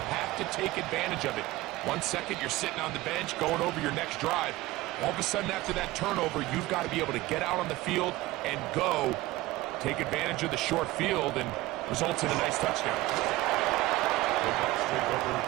have to take advantage of it. 1 second, you're sitting on the bench, going over your next drive. All of a sudden, after that turnover, you've got to be able to get out on the field and go. Take advantage of the short field and results in a nice touchdown. The Bucs take over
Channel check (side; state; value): left; quieter; 18.4 dB